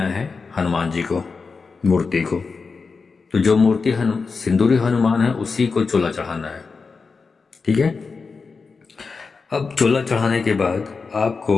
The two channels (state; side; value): quieter; right; 4.7 dB